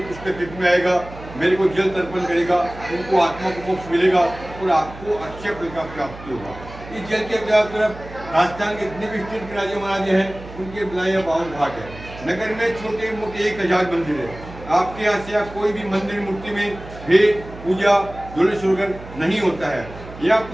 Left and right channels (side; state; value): right; noise; hum, 15 dB below the sound